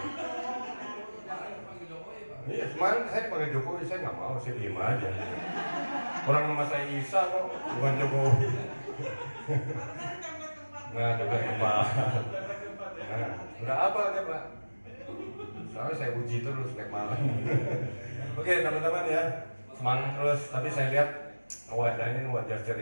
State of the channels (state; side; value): inverted; both; correlation -1.00